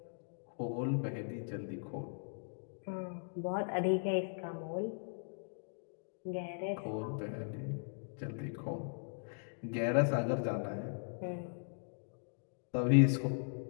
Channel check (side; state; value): right; silent; digital silence